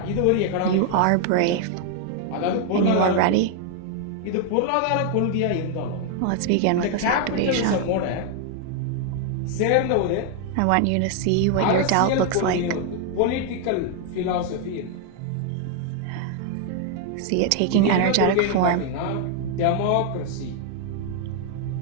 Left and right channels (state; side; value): different; both; correlation 0.00